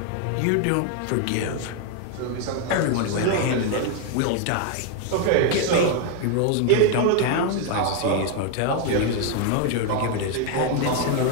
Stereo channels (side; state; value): both; different; correlation 0.01